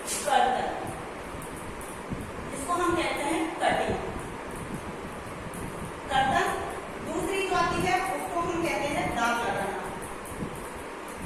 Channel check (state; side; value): identical; both; correlation 1.00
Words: कर्तन, इसको हम कहते हैं कटिंग कर्तन। दूसरी जो आती है उसको हम कहते हैं दाग लगाना।